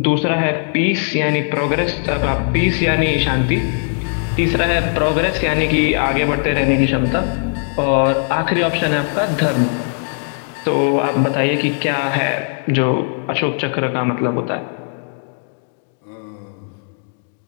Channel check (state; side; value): silent; right; 63 dB below the other